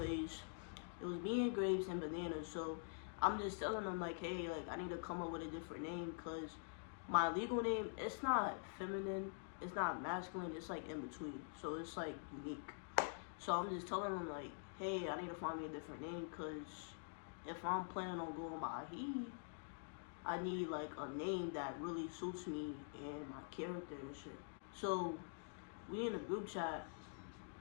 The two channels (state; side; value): silent; right; digital silence